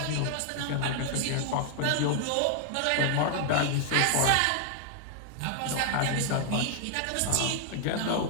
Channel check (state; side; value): different; both; correlation 0.00